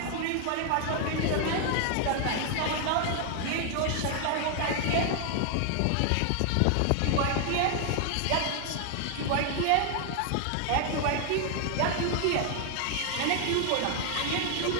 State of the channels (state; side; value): different; both; correlation 0.00